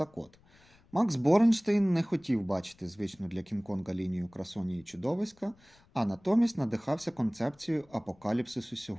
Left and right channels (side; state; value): left; noise; rumble, 30 dB below the sound